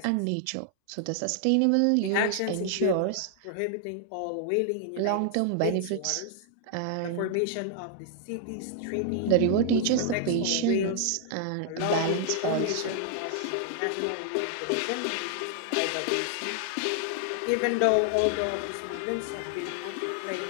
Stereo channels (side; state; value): both; different; correlation 0.00